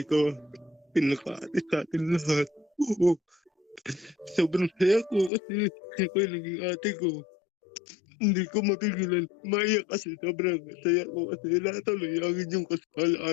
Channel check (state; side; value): drops out; right; at 5.3 s